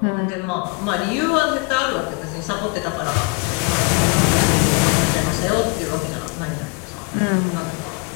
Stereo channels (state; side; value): quieter; right; 28.7 dB